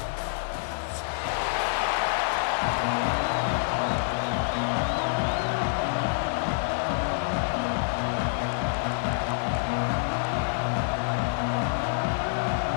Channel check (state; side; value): silent; right; digital silence